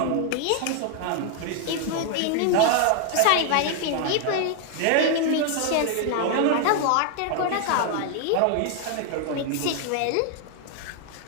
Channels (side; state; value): both; different; correlation 0.00